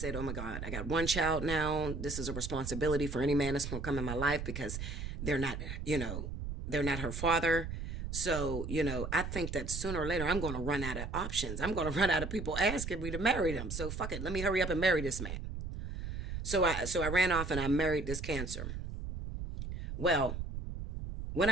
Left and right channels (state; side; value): noise; right; rumble, 6 dB below the sound